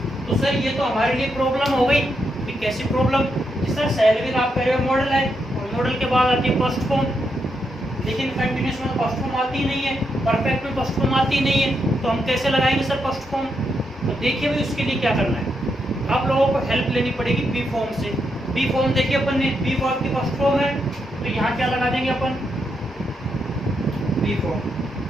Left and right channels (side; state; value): both; normal; correlation 0.82